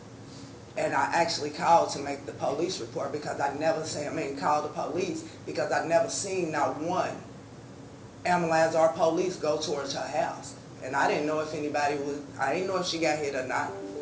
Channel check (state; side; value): identical; both; correlation 1.00